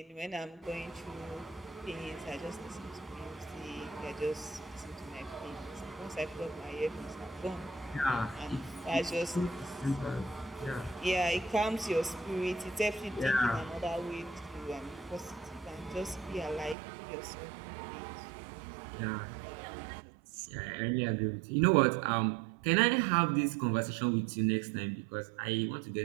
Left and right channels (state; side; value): drops out; left; at 16.8 s